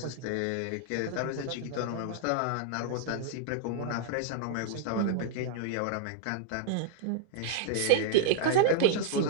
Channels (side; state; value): both; different; correlation -0.01